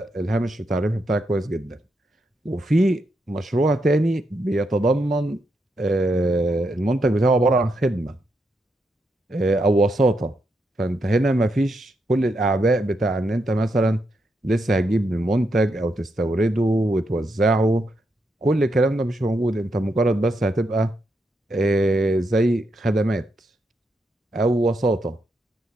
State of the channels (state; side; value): normal; both; correlation 0.81